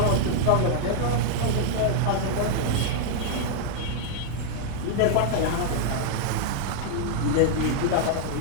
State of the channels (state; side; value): different; both; correlation -0.01